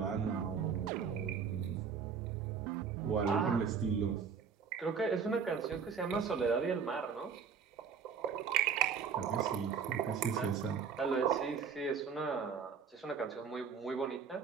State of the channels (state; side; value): quieter; left; 6.4 dB